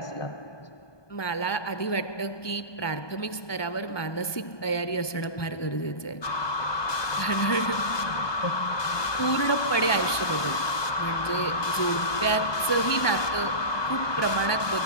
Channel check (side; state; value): right; late; 1.2 ms